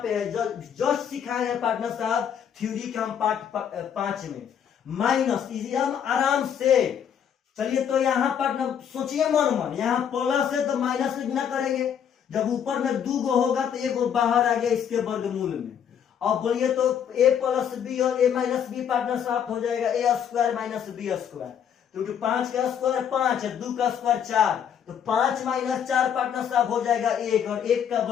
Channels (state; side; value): quieter; right; 8.5 dB